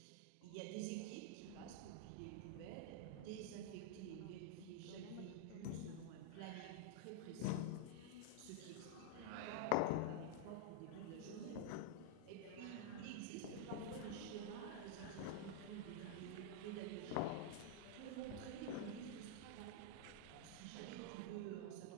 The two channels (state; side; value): different; both; correlation -0.01